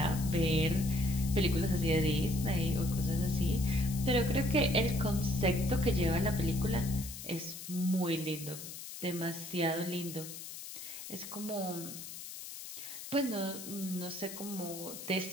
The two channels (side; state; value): left; noise; hiss, 11 dB below the sound